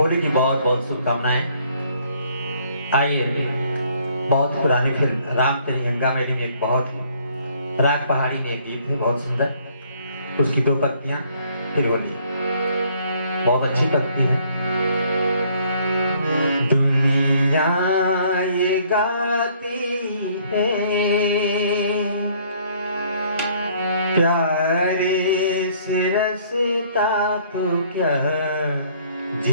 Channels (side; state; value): both; inverted; correlation -0.62